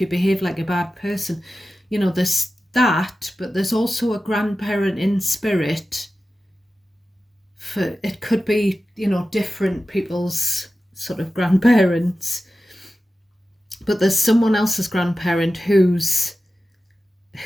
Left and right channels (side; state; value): both; normal; correlation 0.94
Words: behave like a bad person? You know, there's that, but there's also a grandparent in spirit. For it could be, you know, different people's sort of grandparents. But there's someone else's grandparent who's